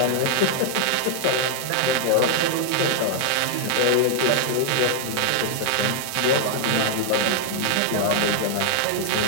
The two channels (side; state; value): both; different; correlation -0.01